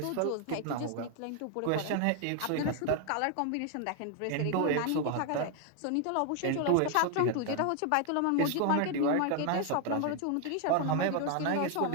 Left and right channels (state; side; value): different; both; correlation 0.01